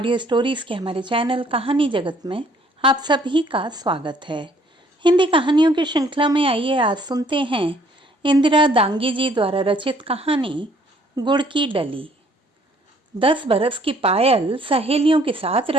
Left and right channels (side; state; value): both; normal; correlation 0.61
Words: स्टोरीज के हमारे चैनल कहानी जगत में आप सभी का स्वागत है। हिंदी कहानियों की श्रृंखला में आइए आज सुनते हैं इंदिरा दांगी जी द्वारा रचित कहानी गुड़ की डली। 10 बरस की पायल सहेलियों के साथ